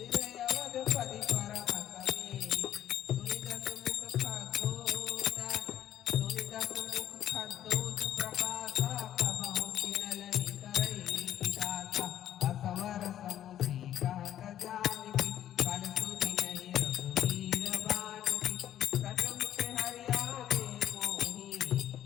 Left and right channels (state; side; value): quieter; right; 11.3 dB